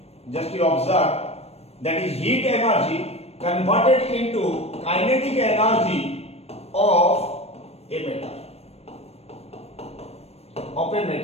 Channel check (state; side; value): late; right; 0.30 ms